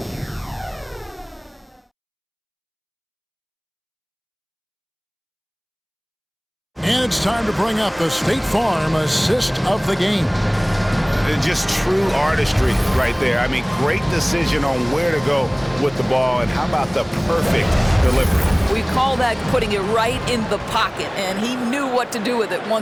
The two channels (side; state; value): both; identical; correlation 1.00